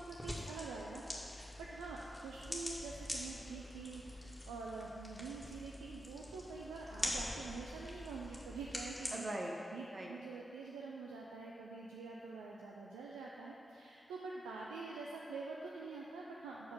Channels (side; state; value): both; normal; correlation 0.84